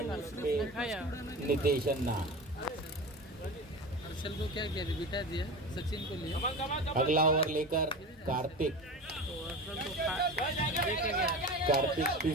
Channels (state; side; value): normal; both; correlation 0.29